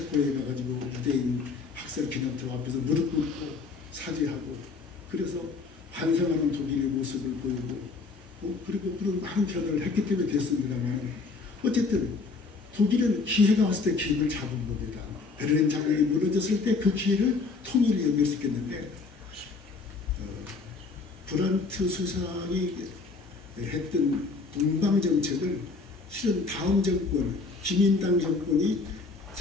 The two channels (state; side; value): quieter; right; 4.2 dB